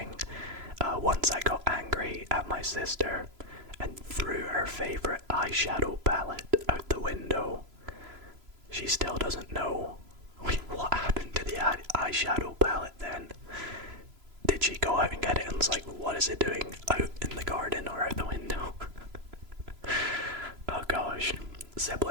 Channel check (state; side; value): late; left; 3.0 ms